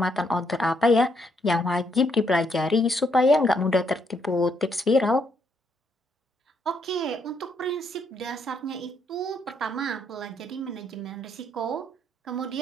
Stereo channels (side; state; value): both; normal; correlation 0.74